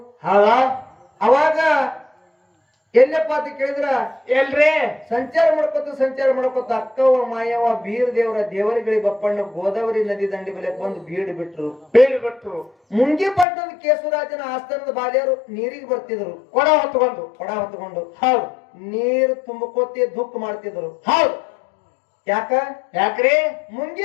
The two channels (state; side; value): drops out; right; at 13.5 s